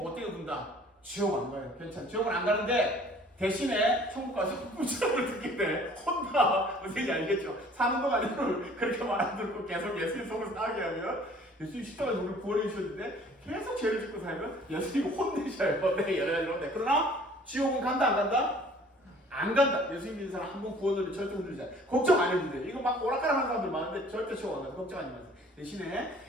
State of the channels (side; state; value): both; normal; correlation 0.53